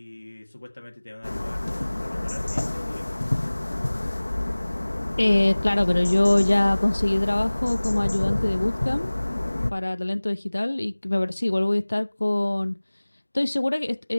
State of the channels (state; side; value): inverted; both; correlation -1.00